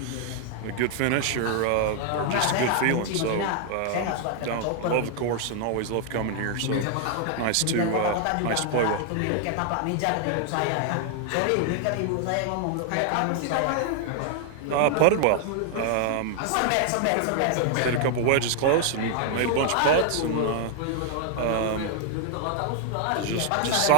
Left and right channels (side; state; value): both; different; correlation 0.00